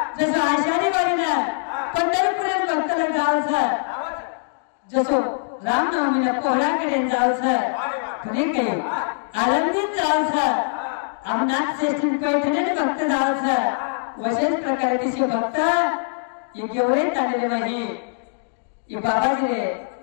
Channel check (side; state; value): right; silent; digital silence